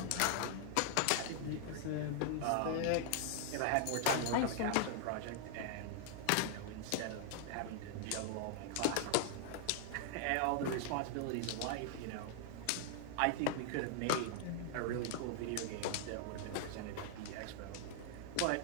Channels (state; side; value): different; both; correlation 0.00